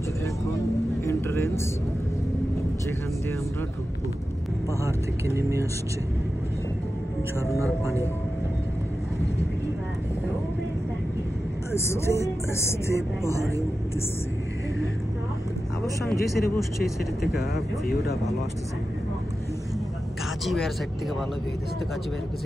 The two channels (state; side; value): normal; both; correlation 0.92